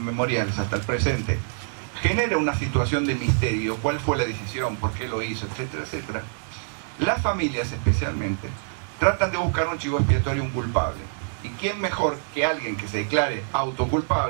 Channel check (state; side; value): silent; left; digital silence